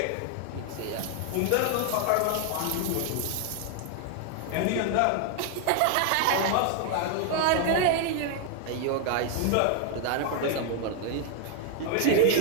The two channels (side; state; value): both; different; correlation 0.00